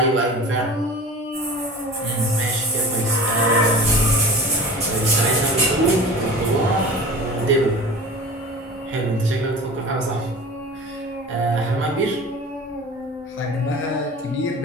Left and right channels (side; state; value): both; normal; correlation 0.38